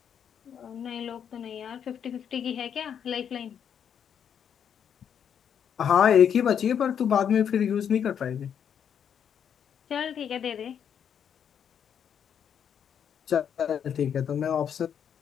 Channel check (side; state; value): right; quieter; 8.2 dB